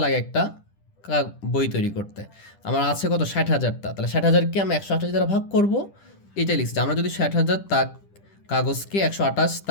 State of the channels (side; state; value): right; late; 10 ms